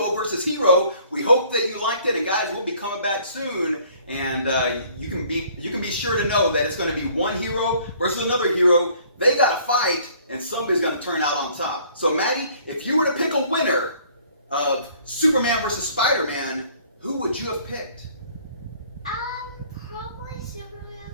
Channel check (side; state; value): both; inverted; correlation -0.57